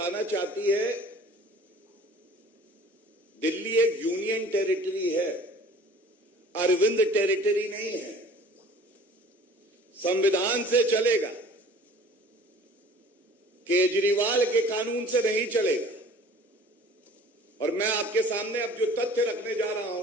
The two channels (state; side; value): normal; both; correlation 0.48